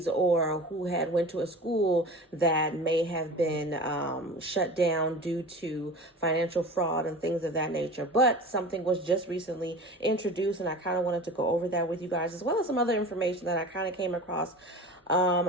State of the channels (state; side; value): normal; both; correlation 0.35